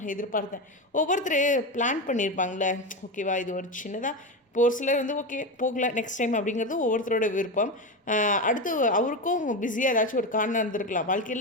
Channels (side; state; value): both; normal; correlation 0.17